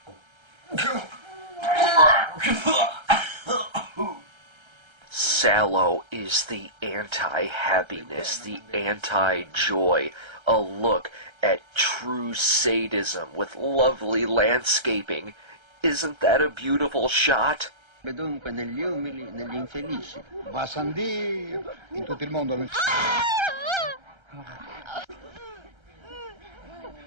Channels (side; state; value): left; late; 1.3 ms